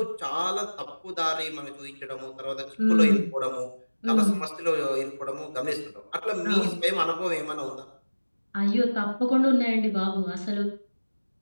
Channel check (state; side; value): inverted; both; correlation -1.00